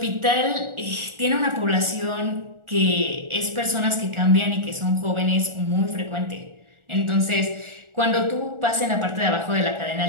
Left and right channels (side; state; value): left; late; 1.4 ms